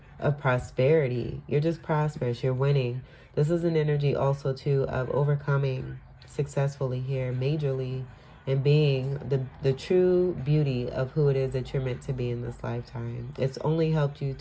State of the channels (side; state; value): both; identical; correlation 1.00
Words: of prosperity. You're just prosperous. You're winning. This is an energy also too of overcoming successfully here, majorly, and being the true beauty of who it is that you're meant to be in this lifetime. It's only helped you